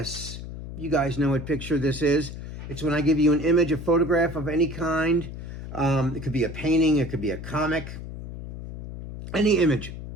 You guys know what Picture This is. It's when I give you an image, a photograph of any kind. It could be a painting, it could be a comic, any image,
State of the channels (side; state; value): left; noise; hum, 10 dB below the sound